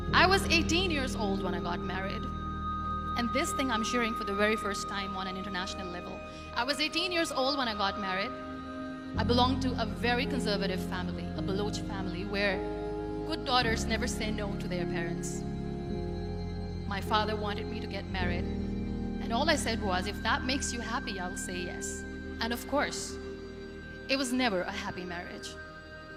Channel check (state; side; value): identical; both; correlation 1.00